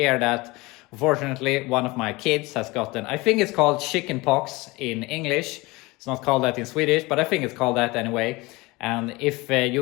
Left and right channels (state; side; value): quieter; right; 22.8 dB